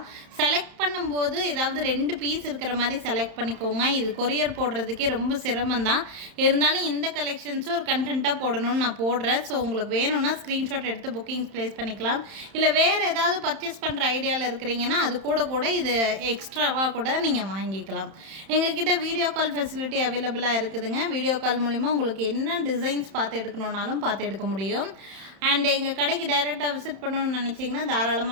செலக்ட் பண்ணும்போது ஏதாவது 2 பீஸ் இருக்கிற மாதிரி செலக்ட் பண்ணிக்கோங்க. இது கொரியர் போடுறதுக்கே ரொம்ப சிரமந்தான். இருந்தாலும் இந்த கலெக்ஷன்ஸும் ஒரு கண்டென்ட்டாக போடணும்னு நான் போடுறேன். ஸோ உங்களுக்கு வேணும்னா ஸ்க்ரீன்ஷாட் எடுத்து புக்கிங்ஸ் ப்ளேஸ் பண்ணிக்கலாம். இல்லை வேறு ஏதாவது பர்ச்சேஸ் பண்ணுற ஐடியாவில் இருக்கிறீங்கன்னா அது கூட இது எக்ஸ்ட்ராவாக கூட நீங்கள் வாங்கிக்கலாம். எங்ககிட்ட வீடியோ கால் ஃபெசிலிட்டி அவைலபிளாக இருக்குதுங்க. வீடியோ கால் மூலிமா உங்களுக்கு என்ன டிசைன்ஸ் பார்த்து எடுக்கணுன்னாலும் பார்த்து எடுக்க முடியும். அண்ட் எங்கள் கடைக்கு டைரெக்டாக விசிட் பண்ணணும்னு நினச்சிங்கன்னா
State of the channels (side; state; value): left; late; 31 ms